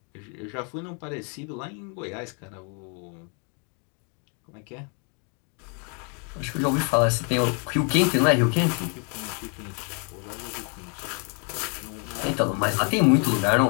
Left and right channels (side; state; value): right; quieter; 38.2 dB